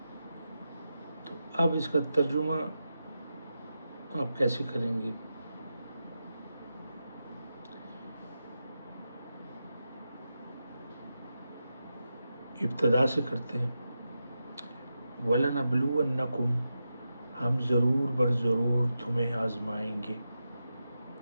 تو اب اس کا ترجمہ آپ کیسے کریں گے؟ ابتدا سے کرتے ہیں، وَلَنَبْلُوَنَّكُمْ، ہم ضرور بر ضرور تمہیں آزمائیں گے،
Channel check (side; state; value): both; inverted; correlation -0.89